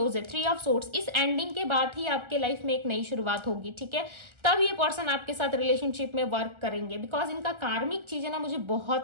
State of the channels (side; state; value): left; late; 1.4 ms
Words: है। 3 ऑफ सोर्ड्स, इस एंडिंग के बाद ही आपके लाइफ में एक नई शुरुआत होगी, ठीक है, तब ये पर्सन आपके साथ रिलेशनशिप में वर्क करेंगे, बिकॉज इनका कार्मिक चीजें ना मुझे